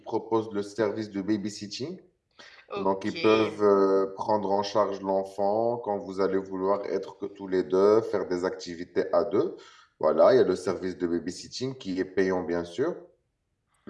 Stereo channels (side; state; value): both; identical; correlation 1.00